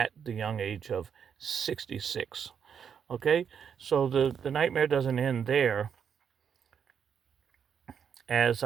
the young age of 66. Okay, so the nightmare doesn't end there. As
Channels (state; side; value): quieter; left; 7.5 dB